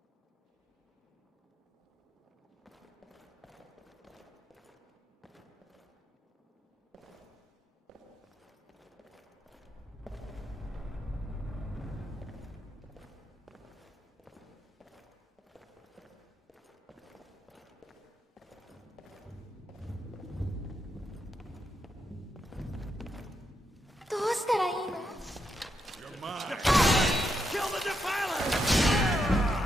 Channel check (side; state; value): both; normal; correlation 0.82